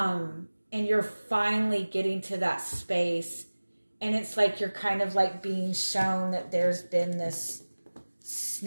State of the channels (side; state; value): both; inverted; correlation -1.00